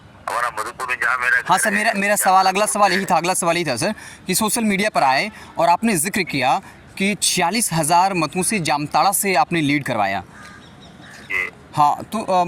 हमारा मधुपुर में जहाँ मेरा। हाँ सर, मेरा सवाल अगला सवाल यही था सर कि सोशल मीडिया पर आए और आपने जिक्र किया कि 46,000 मतों से जामताड़ा से आपने लीड करवाया। हाँ, तो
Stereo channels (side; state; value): both; identical; correlation 1.00